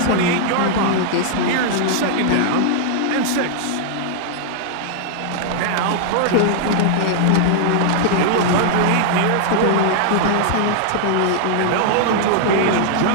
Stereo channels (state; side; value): different; both; correlation -0.01